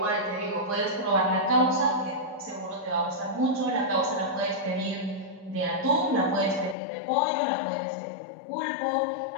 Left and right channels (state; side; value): drops out; right; at 6.8 s